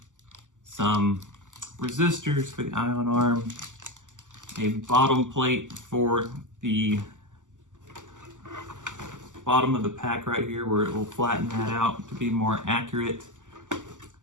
some resistors for the ion arm, a bottom plate for the bottom of the pack right here where it will flatten that out to be more accurate,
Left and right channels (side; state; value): left; late; 0.87 ms